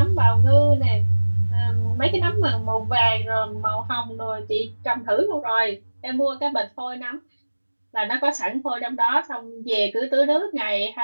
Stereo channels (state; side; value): inverted; both; correlation -1.00